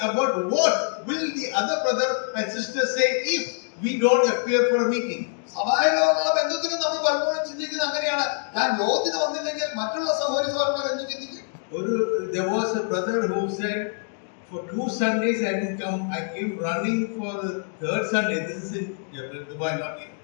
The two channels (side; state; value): right; silent; 62 dB below the other